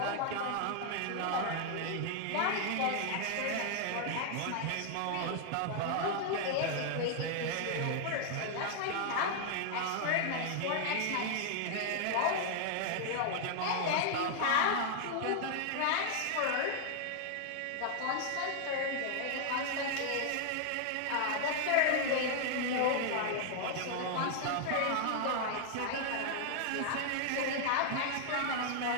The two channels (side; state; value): both; different; correlation 0.00